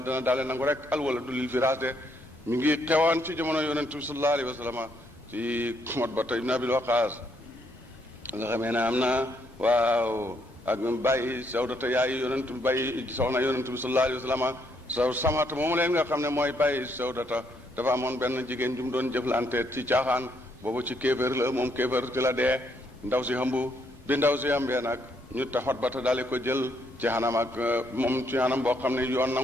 dana daale nangu rek al wala du lil firaas de mi ngi xewoon ci jamono yonent bi sallallahu alayhi wa sallam ci Utbata ibn Abil Waqaas nga xamee ne am na waaw ak bàyyi Sawdata yaay yonent bi bàyyi soxna yonent bi sallallahu alayhi wa sallam Samata moomu leen nga xam ne mooy bàyyi Sawdata dafa amoon benn jigéen ju mu doon jëflante ci caaxaan boobu ci kéefër la moom kéefër ci la dee ndaw si xambu bi ndaw si xambee nag ñu taxot ba te daal ko jël ci xanam ak moom ci xanam boo xam ne yoon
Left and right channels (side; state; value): both; normal; correlation 0.73